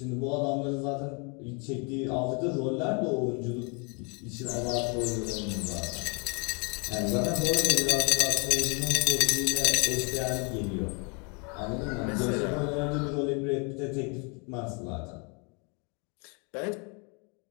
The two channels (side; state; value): right; quieter; 34.0 dB